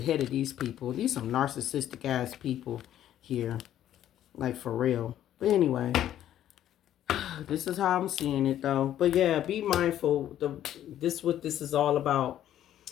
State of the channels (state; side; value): quieter; right; 11.6 dB